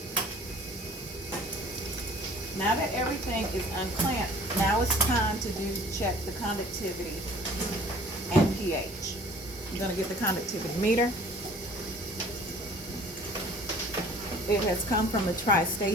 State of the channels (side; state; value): both; normal; correlation 0.49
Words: Now that everything is unclamped, now it's time to check the conductivity and pH. I'm gonna get the conductivity meter. It has come from the